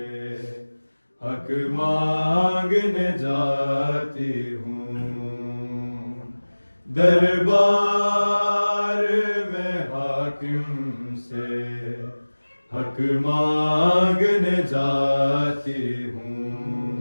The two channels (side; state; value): both; inverted; correlation -1.00